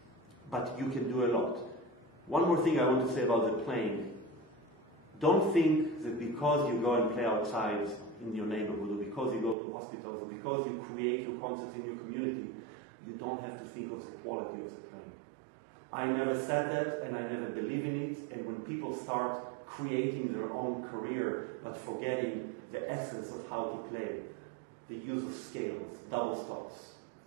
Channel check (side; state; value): left; drops out; at 9.6 s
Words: but you can do a lot. One more thing I want to say about the playing. Don't think that because you go and play outside in your neighborhood, or because you go to hospitals, or because you create your concerts in your community, you don't have to think of the quality of the playing. I never said that, and I never believe in it, and when people start creating their own career, but forgetting the essence of how to play, the use of scales, double stops,